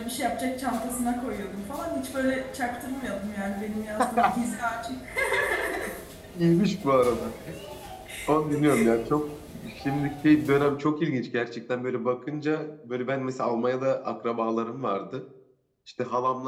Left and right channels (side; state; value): both; identical; correlation 1.00